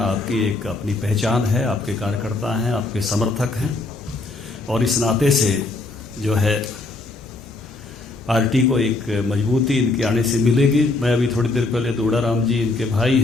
आपकी एक अपनी पहचान है, आपके कार्यकर्ता हैं, आपके समर्थक हैं, और इस नाते से जो है पार्टी को एक मजबूती इनके आने से मिलेगी। मैं अभी थोड़ी देर पहले दोड़ाराम जी इनके भाई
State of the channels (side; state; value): right; quieter; 3.3 dB